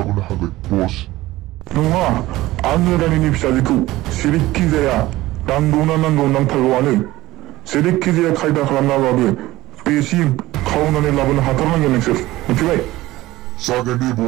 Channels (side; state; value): left; quieter; 17.5 dB